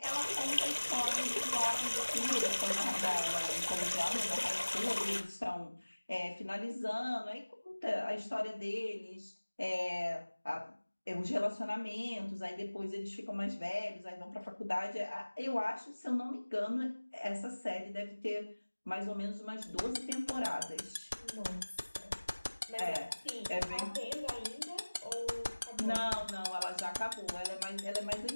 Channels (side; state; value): both; inverted; correlation -1.00